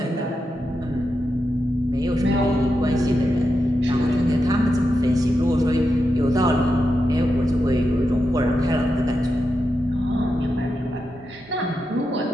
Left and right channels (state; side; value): normal; both; correlation 0.87